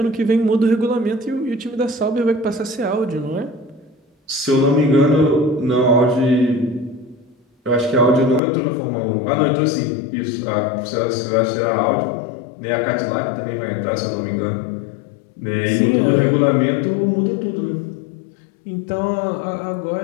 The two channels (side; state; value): right; drops out; at 8.4 s